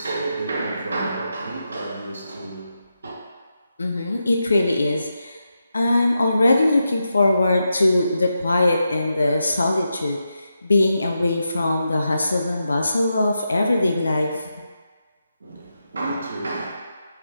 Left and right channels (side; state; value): both; inverted; correlation -0.87